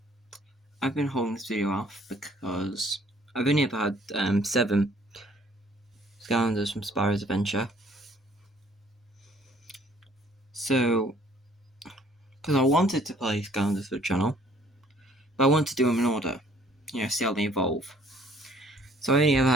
holding this video off because I've only ever had 7 Skylanders from Spyro's Adventure. So, because I wanted to play Skylanders for the channel, but I wanted to do them in order, see how they evolve. So I only ever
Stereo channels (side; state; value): both; normal; correlation 0.59